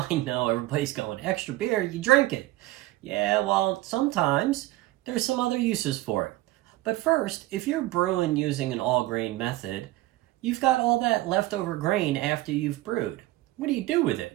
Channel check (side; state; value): left; quieter; 17.7 dB